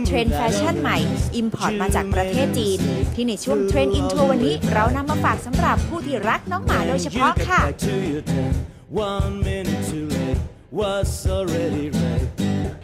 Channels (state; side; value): identical; both; correlation 1.00